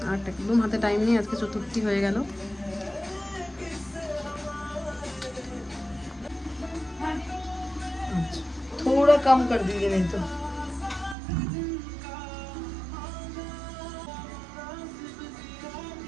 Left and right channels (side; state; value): left; drops out; at 11.2 s